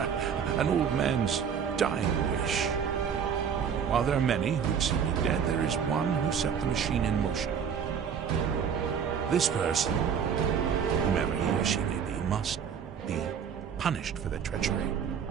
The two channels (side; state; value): left; quieter; 7.4 dB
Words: An old man's dying wish. While there are many who'd see me dead, there is one who set the machine in motion. This person, whomever he or she may be, must be punished for their treachery.